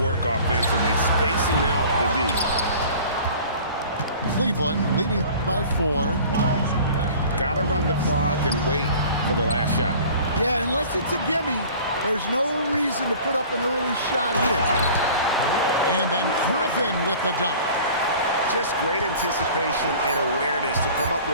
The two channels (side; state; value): both; inverted; correlation -0.45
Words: offensively, spacing out the D. Cleveland leading by 4. Got to run the clock and wait for the last shot. Yeah, unless it's a gimme, there's no reason to put up an early shot here. And then Griffin with the dunk. Just great anticipation and awareness to come up